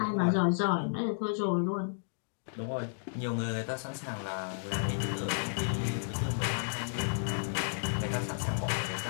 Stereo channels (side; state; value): right; silent; digital silence